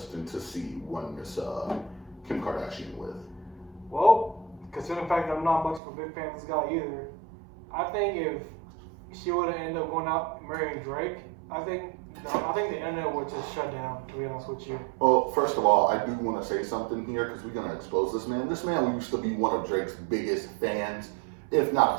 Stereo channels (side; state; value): left; drops out; at 5.8 s